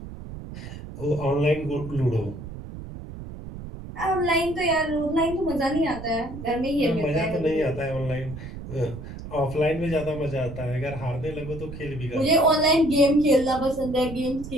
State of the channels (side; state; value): right; noise; rumble, 11 dB below the sound